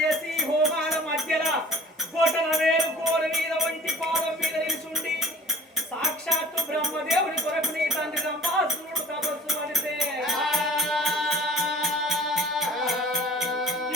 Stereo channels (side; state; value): both; normal; correlation 0.45